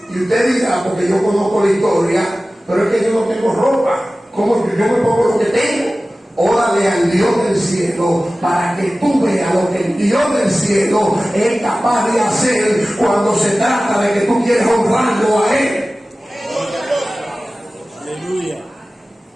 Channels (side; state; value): both; normal; correlation 0.96